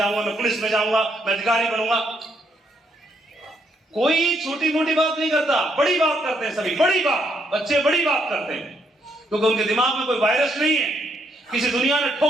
मैं पुलिस में जाऊंगा, मैं अधिकारी बनूंगा। कोई छोटी मोटी बात नहीं करता, बड़ी बात करते हैं सभी, बड़ी बात। बच्चे बड़ी बात करते हैं क्योंकि उनके दिमाग में कोई वायरस नहीं है। किसी दुनिया ने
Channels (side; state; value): both; normal; correlation 0.74